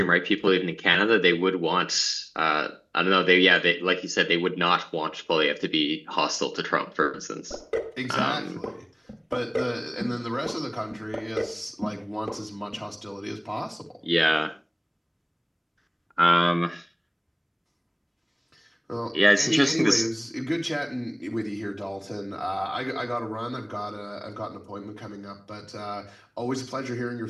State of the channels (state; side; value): identical; both; correlation 1.00